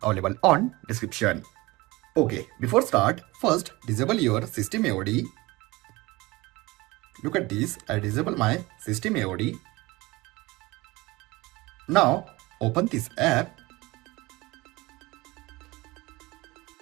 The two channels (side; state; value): left; quieter; 21.7 dB